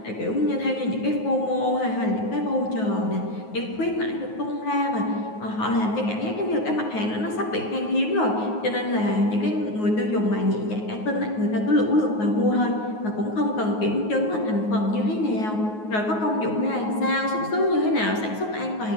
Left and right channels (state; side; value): late; right; 9.4 ms